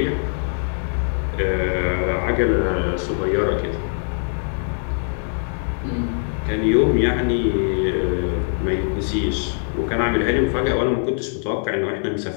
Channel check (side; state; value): right; silent; digital silence